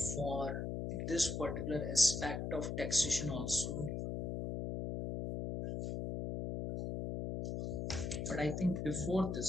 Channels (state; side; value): noise; left; hum, 3 dB below the sound